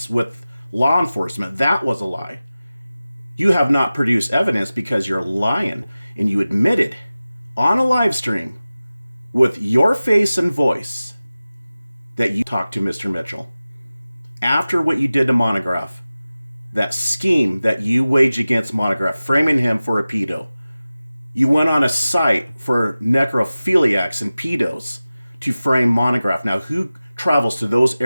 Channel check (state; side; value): inverted; both; correlation -0.96